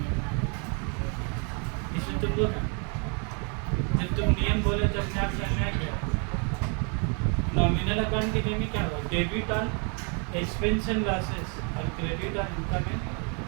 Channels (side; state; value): left; quieter; 37.2 dB